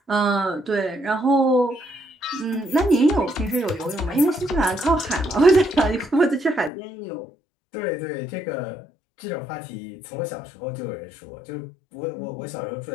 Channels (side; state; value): right; drops out; at 6.7 s